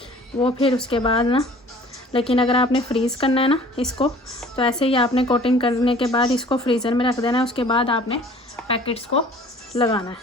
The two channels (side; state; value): both; normal; correlation 0.50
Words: वो फिर उसके बाद ना, लेकिन अगर आपने फ्रीज़ करना है ना इसको, तो ऐसे ही आपने कोटिंग करने के बाद इसको फ्रीज़र में रख देना है। उसके बाद आपने पैकेट्स को लगाना